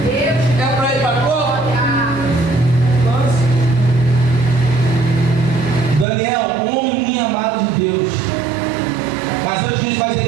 para ir para cova? Daniel, homem muito amado de Deus. Mas antes disso vai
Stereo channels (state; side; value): drops out; left; at 6.1 s